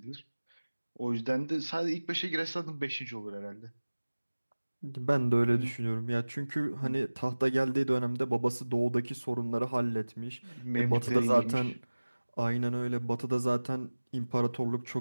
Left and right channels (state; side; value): inverted; both; correlation -1.00